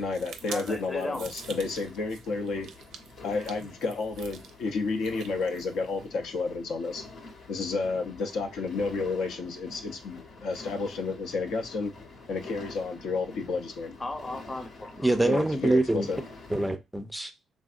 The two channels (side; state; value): both; normal; correlation 0.81